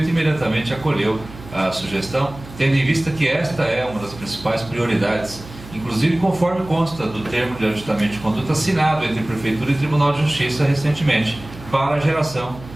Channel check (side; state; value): right; noise; hum, 17 dB below the sound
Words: imediatamente acolheu a sugestão, tendo em vista que esta é uma das principais prioridades, inclusive conforme consta do termo de ajustamento de conduta assinado entre Prefeitura e Tribunal de Justiça recentemente, para a geração